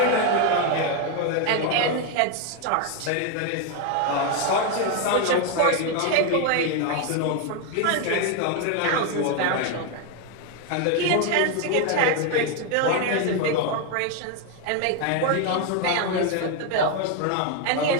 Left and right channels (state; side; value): different; both; correlation 0.01